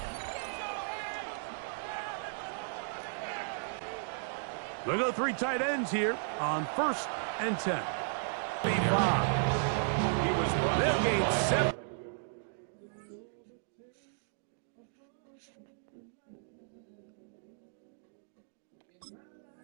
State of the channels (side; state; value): left; silent; digital silence